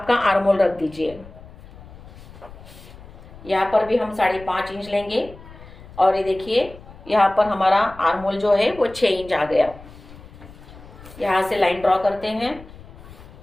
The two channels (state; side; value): noise; left; rumble, 19 dB below the sound